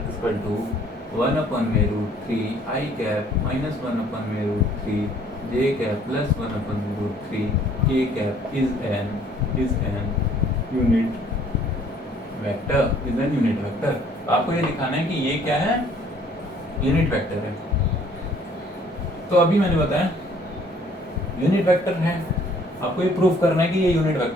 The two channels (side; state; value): both; normal; correlation 0.59